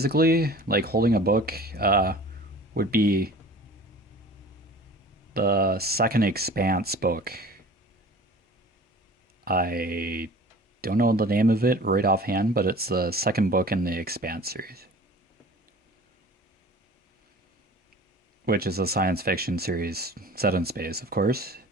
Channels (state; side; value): normal; both; correlation 0.43